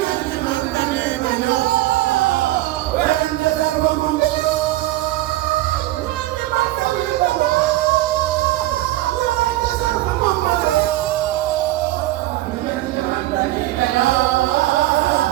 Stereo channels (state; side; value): quieter; left; 16.6 dB